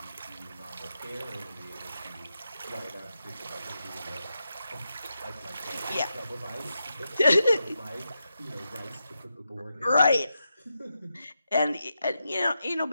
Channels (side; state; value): both; inverted; correlation -0.87